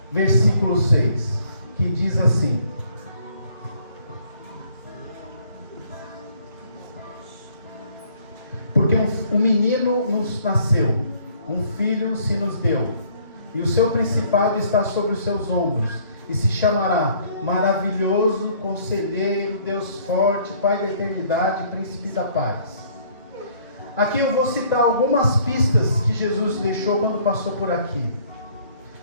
versículo 6, que diz assim: porque um menino nos nasceu, um filho se nos deu, e o seu principado está sobre os seus ombros, e se chamará Maravilhoso, Conselheiro, Deus Forte, Pai da Eternidade, Príncipe da Paz. Aqui eu vou citar algumas pistas que Jesus deixou quando passou por aqui.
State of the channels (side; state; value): both; inverted; correlation -0.60